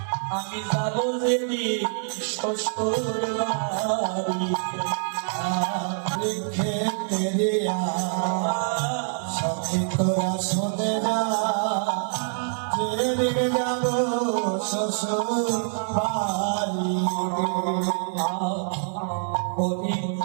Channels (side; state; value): left; silent; digital silence